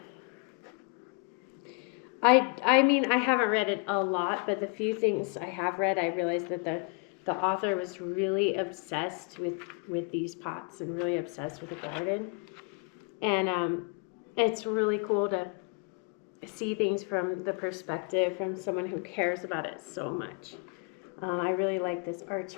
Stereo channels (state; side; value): quieter; right; 35.1 dB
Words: I mean, I haven't read it a lot, but the few things I have read, I realized that the author was really obsessed with these pots and really obsessed with the garden. And it's really cool to see things from the perspective from someone who cares about it so much. I really like this